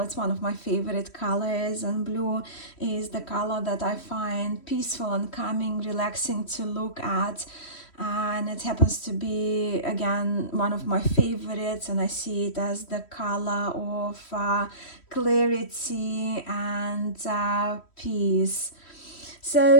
it's one of my favorite colors, and blue is the color that I find peaceful and calming, relaxing to look at. And it happens to be, again, one of my favorites, and I see it as the color of clarity and peace.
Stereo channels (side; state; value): right; late; 3.1 ms